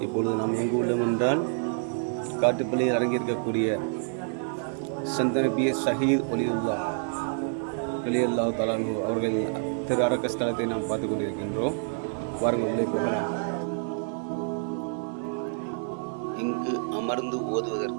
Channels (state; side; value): silent; left; 59 dB below the other